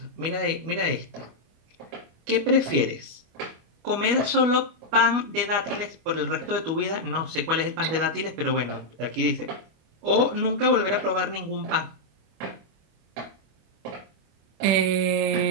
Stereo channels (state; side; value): late; left; 25 ms